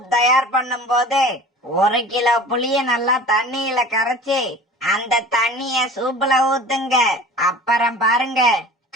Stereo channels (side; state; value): both; normal; correlation 0.41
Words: தயார் பண்ணும் போது 1 கிலோ புளிய நல்லா தண்ணியில கரைச்சி அந்த தண்ணிய சூப்ல ஊத்துங்க. அப்புறம் பாருங்க,